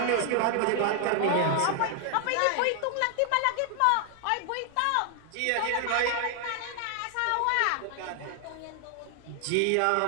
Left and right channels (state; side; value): different; both; correlation 0.00